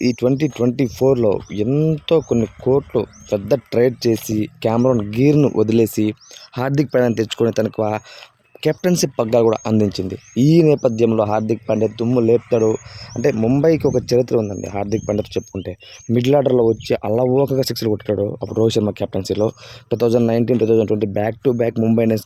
ఈ 2024లో ఎంతో కొన్ని కోట్లు పెద్ద ట్రేడ్ చేసి క్యామరాన్ గ్రీన్‌ను వదిలేసి హార్దిక్ పాండ్యాని తెచ్చుకొని తనకు కెప్టెన్సీ పగ్గాలు కూడా అందించింది. ఈ నేపథ్యంలో హార్దిక్ పాండ్యా దుమ్ము లేపుతాడు. అంటే ముంబైకి ఒక చరిత్ర ఉందండి హార్దిక్ పాండ్యాతో చెప్పుకుంటే. మిడిల్ ఆర్డర్‌లో వచ్చి అలవోకగా సిక్స్‌లు కొట్టాడు అప్పుడు రోహిత్ శర్మ కెప్టెన్సీలో. 2019, 2020 back to back Mumbai Indians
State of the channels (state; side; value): identical; both; correlation 1.00